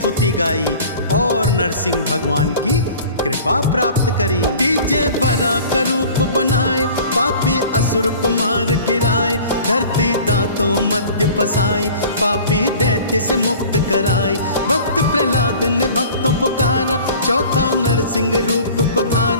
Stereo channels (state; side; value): inverted; both; correlation -0.44